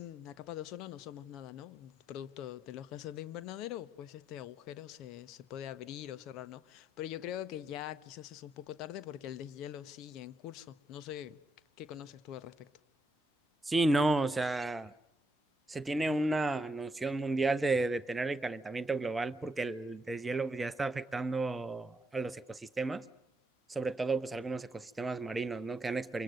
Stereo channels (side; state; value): both; normal; correlation 0.81